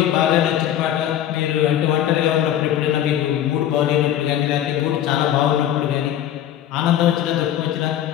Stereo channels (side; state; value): right; quieter; 11.3 dB